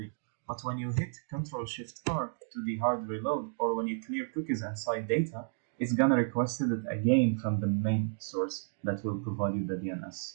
But when you hit Ctrl Shift R to the hard reload, or when you clear cookies and site data, it's gonna request it again from the main source that will provide you the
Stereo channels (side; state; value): left; silent; digital silence